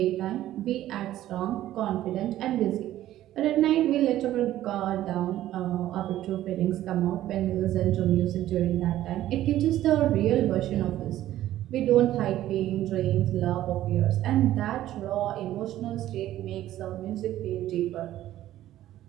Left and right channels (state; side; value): quieter; left; 13.6 dB